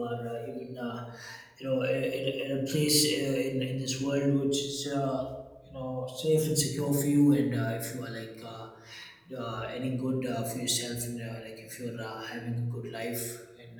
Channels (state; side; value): identical; both; correlation 1.00